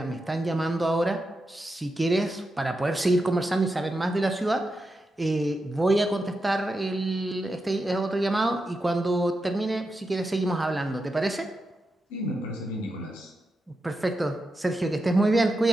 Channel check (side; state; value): both; normal; correlation 0.88